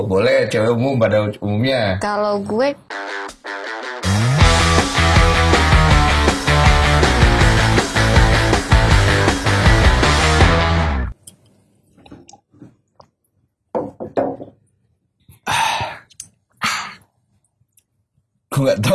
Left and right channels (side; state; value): both; identical; correlation 1.00